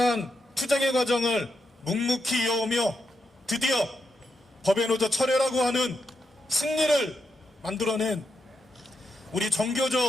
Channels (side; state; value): both; normal; correlation 0.84